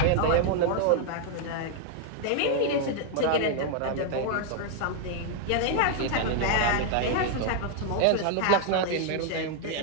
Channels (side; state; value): both; different; correlation 0.00